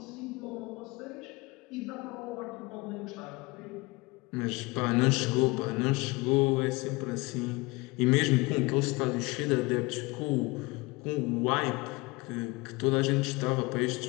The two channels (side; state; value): right; quieter; 24.3 dB